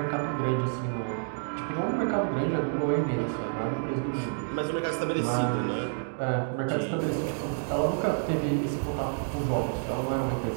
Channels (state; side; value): silent; left; digital silence